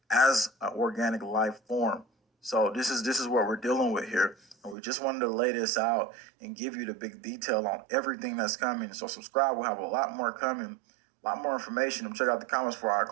as an organic life form. So this is what we're dealing with here. And we just wanted to lay this out and give you the big detail on everything that's coming. So subscribe. We'll have a lot more coming, a lot more information. And check out the comments before I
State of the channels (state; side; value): drops out; left; at 4.8 s